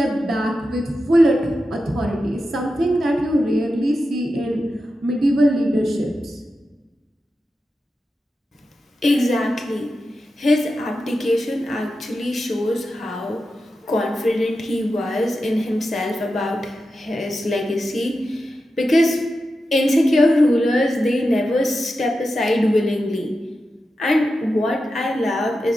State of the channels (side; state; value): both; normal; correlation 0.90